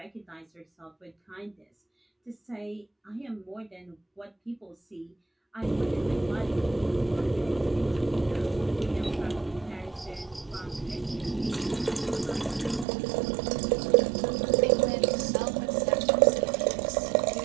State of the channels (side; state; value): left; drops out; at 12.9 s